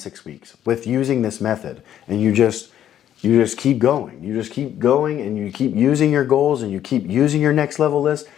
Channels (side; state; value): right; quieter; 10.8 dB